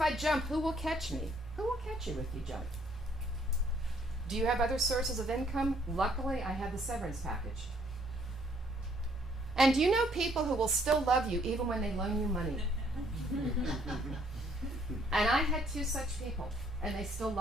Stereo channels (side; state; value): both; normal; correlation 0.65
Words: jump, who will catch me? Who will catch you if you jump? Do you have other sources of income? Luckily, I have the severance package. And do you know people who will still love you even when they loan you money? And I had 2 such people, and they still